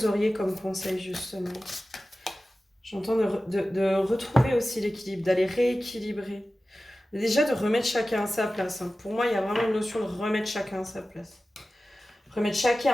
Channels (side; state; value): both; normal; correlation 0.95